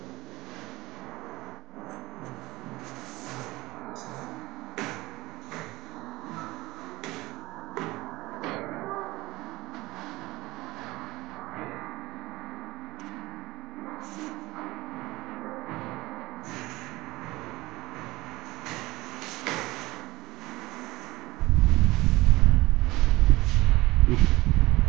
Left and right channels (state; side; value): quieter; left; 19.5 dB